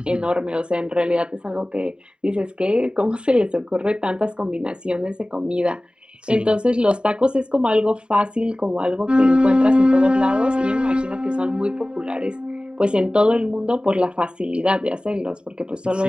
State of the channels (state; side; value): late; left; 0.051 ms